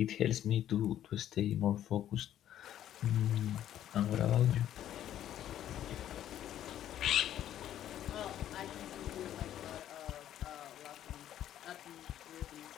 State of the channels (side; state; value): right; quieter; 11.5 dB